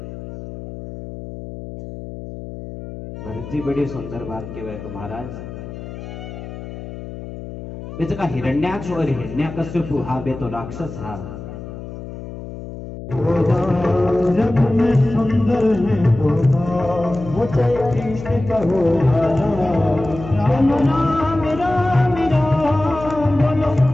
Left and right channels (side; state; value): left; noise; hum, 11 dB below the sound